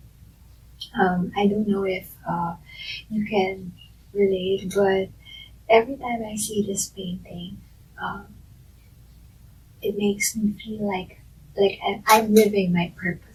I don't know if you can relate, but every time I see this painting, it makes me feel like I'm living my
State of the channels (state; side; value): identical; both; correlation 1.00